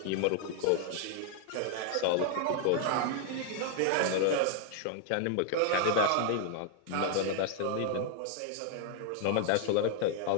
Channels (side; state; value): both; different; correlation 0.00